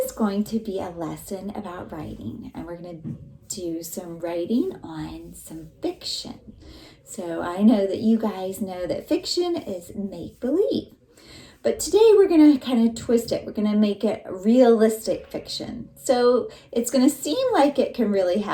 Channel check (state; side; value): identical; both; correlation 1.00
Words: is going to be a lesson about writing, and we're going to do some writing on some fiction. So I know that you guys know that fiction is make-believe. But today we're going to kind of twist it. We're going to make it realistic fiction. So it's going to seem like it can really